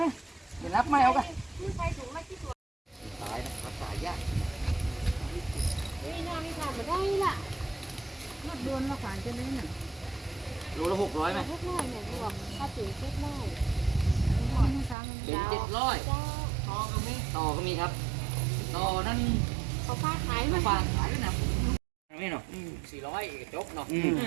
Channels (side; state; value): left; drops out; at 15.0 s